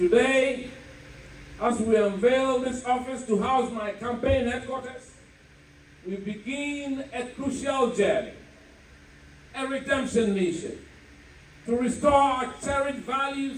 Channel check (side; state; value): both; identical; correlation 1.00